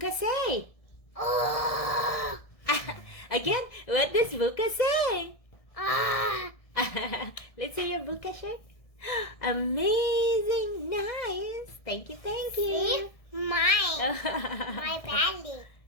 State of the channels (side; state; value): right; late; 1.6 ms